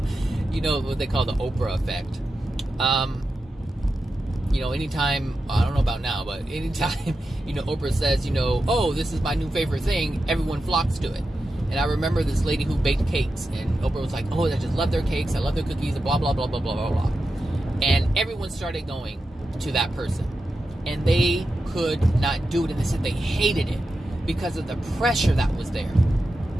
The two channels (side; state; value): both; normal; correlation 0.90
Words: what they call the Oprah effect. Anytime, I don't know about now, but anytime, Oprah says, oh, this is my new favorite thing, everyone flocks to it. And I remember this lady who baked cakes, and Oprah was like, oh, I just love their cakes, I love their cookies, and blah, blah, blah, blah, blah, blah, blah. And everyone started going to that person. And they could not do it, and they said they hated it because of the pressure that was there.